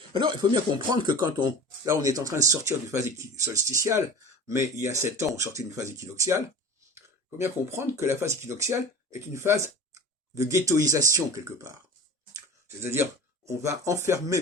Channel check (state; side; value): normal; both; correlation 0.36